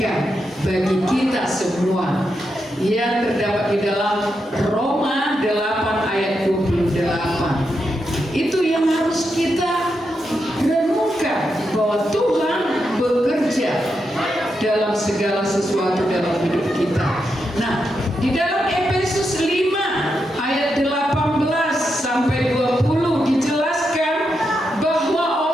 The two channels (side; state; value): both; normal; correlation 0.85